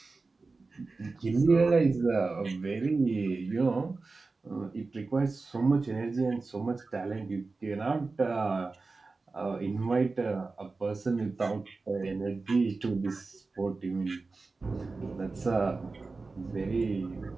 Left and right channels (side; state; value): left; quieter; 3.8 dB